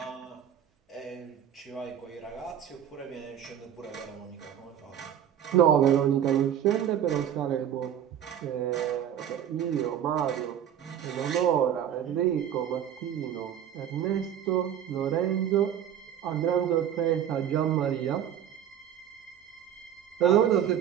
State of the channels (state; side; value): quieter; left; 9.9 dB